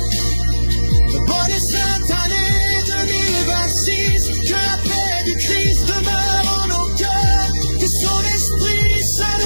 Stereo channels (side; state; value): both; inverted; correlation -1.00